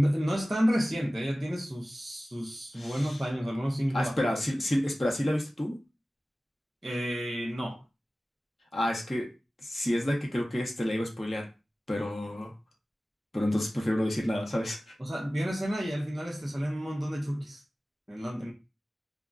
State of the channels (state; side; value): normal; both; correlation 0.96